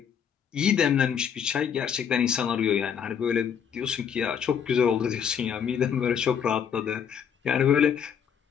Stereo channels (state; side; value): quieter; right; 7.8 dB